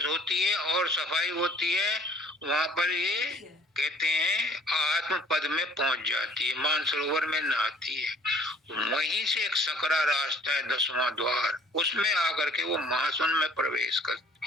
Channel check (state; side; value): normal; both; correlation 0.55